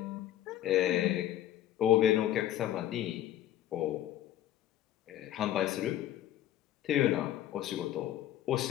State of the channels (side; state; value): right; quieter; 12.4 dB